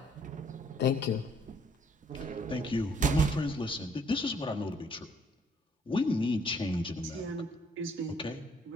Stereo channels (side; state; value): both; normal; correlation 0.64